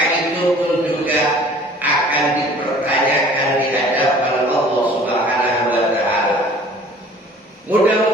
itu pun juga akan dipertanyakan di hadapan Allah Subhanahu wa Ta'ala.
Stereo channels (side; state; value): both; normal; correlation 0.50